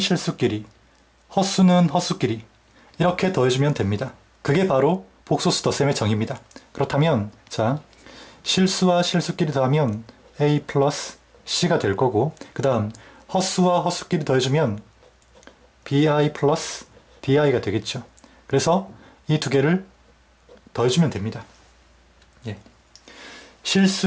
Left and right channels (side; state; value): both; identical; correlation 1.00